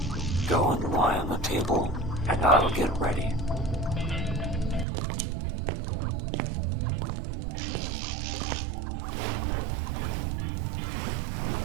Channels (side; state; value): left; drops out; at 4.9 s